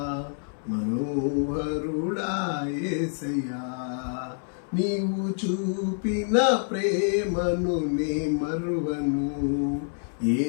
మనోహరుడా యేసయ్యా. నీవు చూపిన ప్రేమను నే మరువను ఏ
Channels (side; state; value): right; silent; 60 dB below the other